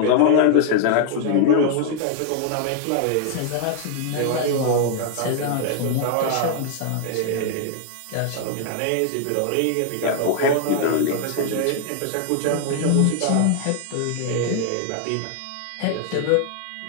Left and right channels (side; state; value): both; different; correlation 0.00